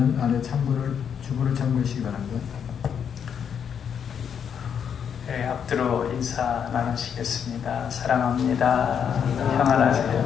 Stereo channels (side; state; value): right; quieter; 7.8 dB